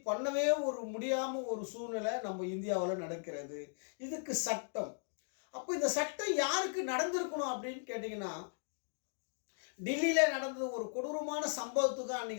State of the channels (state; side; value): silent; right; digital silence